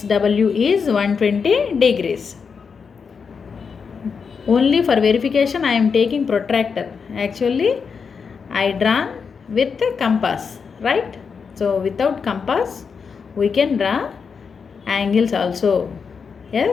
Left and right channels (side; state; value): right; quieter; 5.8 dB